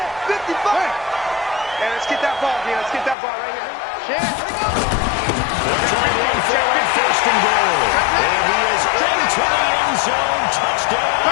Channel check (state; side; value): drops out; right; at 3.2 s